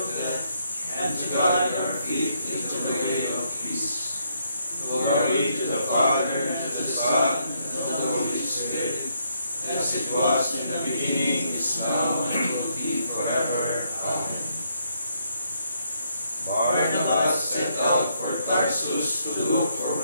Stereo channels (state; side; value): inverted; both; correlation -0.74